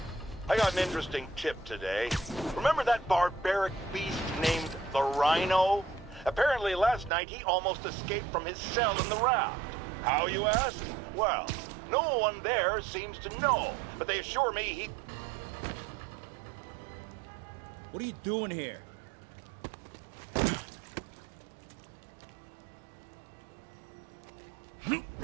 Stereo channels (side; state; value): left; drops out; at 7.1 s